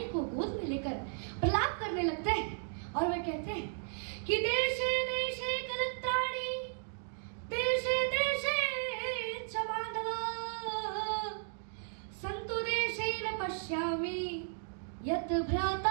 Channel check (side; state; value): left; silent; digital silence